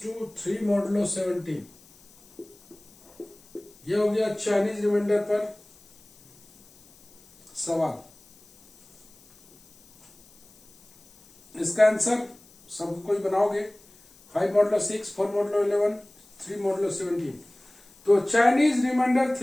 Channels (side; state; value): left; noise; hiss, 27 dB below the sound